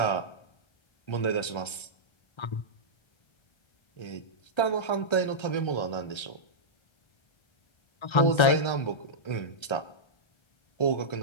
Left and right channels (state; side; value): late; right; 1.3 ms